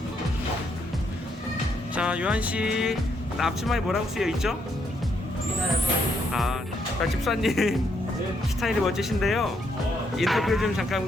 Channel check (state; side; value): normal; both; correlation 0.75